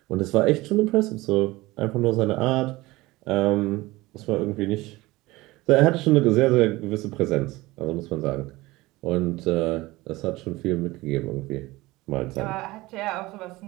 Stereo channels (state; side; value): quieter; left; 20.1 dB